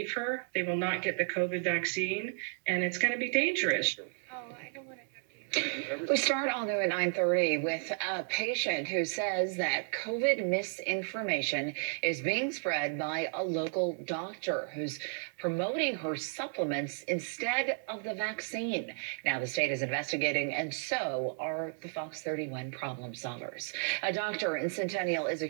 her. They will not get the COVID vaccine, and it's going to be dangerous. We start all new at 9:30 with a patient who says that COVID misinformation is being spread by a local doctor who's promoting her supplements instead of the vaccine. Now the state is investigating, and so are the Fox 31 problem solvers. A doctor in Centennial is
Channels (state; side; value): silent; left; 56 dB below the other